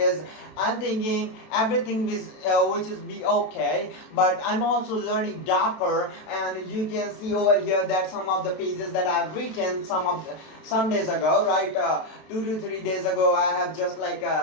I'm thinking everything which is be okay, but I'm also learning Docker, and you can see over here that some of the pages that I've written some days ago, right? 2 to 3 days ago, I have just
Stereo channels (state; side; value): late; right; 32 ms